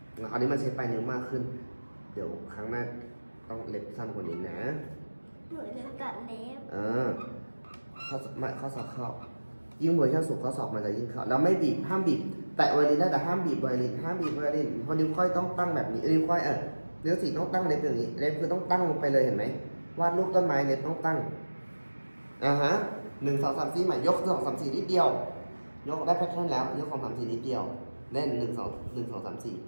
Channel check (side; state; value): both; inverted; correlation -1.00